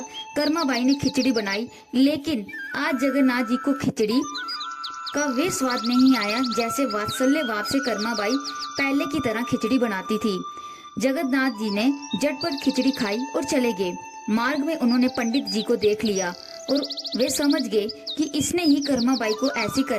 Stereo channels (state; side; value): identical; both; correlation 1.00